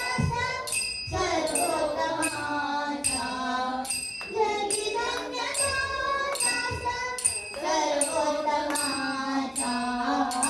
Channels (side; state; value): both; identical; correlation 1.00